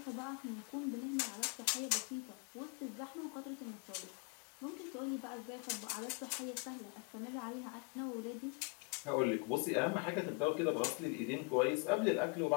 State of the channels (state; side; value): quieter; right; 32.3 dB